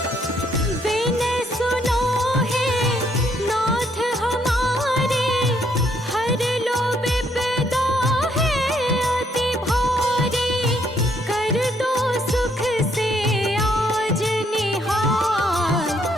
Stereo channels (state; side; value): normal; both; correlation 0.70